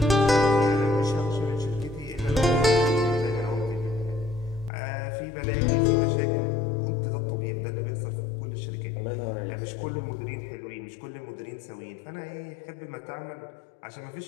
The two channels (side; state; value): right; drops out; at 4.7 s